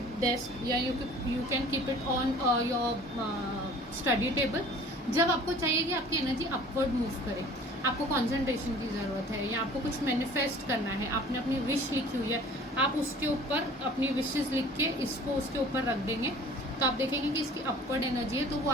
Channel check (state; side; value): normal; both; correlation 0.47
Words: desk या you can keep it on your study table. जब आपको चाहिए कि आपकी एनर्जी अपवर्ड मूव करे, आपको कंसंट्रेशन की ज़रूरत है या आपको कुछ मैनिफेस्ट करना है, आपने अपनी विश लिखी हुई है, आप उसके ऊपर अपनी विशेस लिख के इसको उसके ऊपर रख देंगे, तो आप देखेंगे कि इसकी अपवर्ड एनर्जी है, तो वो